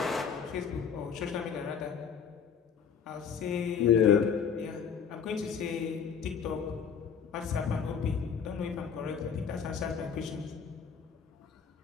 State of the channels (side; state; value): right; quieter; 7.0 dB